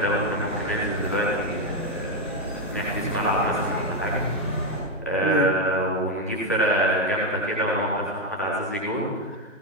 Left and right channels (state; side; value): normal; both; correlation 0.06